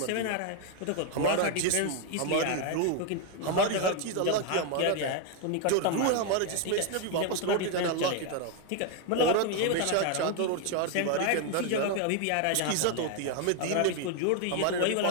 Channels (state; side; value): different; both; correlation 0.01